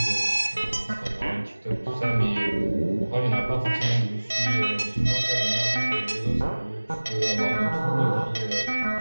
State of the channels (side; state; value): both; inverted; correlation -1.00